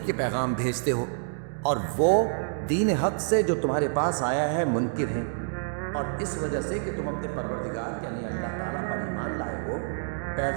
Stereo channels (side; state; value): left; silent; digital silence